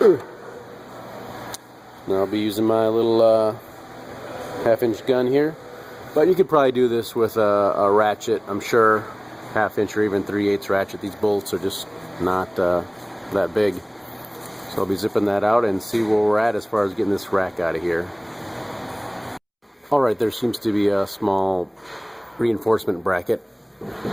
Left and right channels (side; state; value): both; identical; correlation 1.00